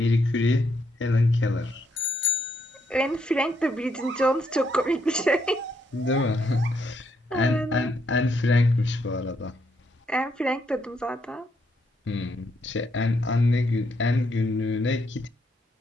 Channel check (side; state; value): both; normal; correlation 0.75